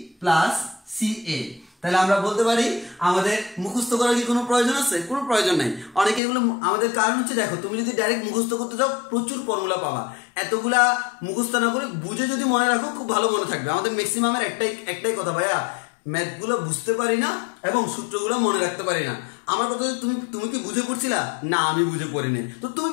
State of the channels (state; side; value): drops out; right; at 6.2 s